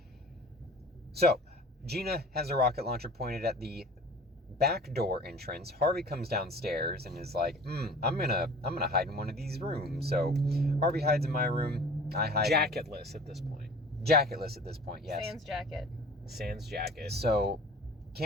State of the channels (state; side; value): normal; both; correlation 0.44